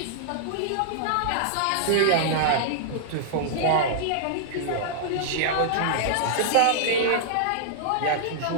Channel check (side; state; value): both; different; correlation -0.01